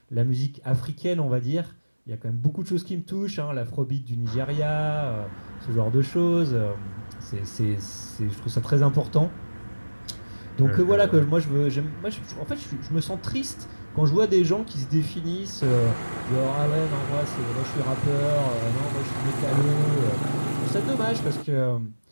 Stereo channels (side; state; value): both; inverted; correlation -1.00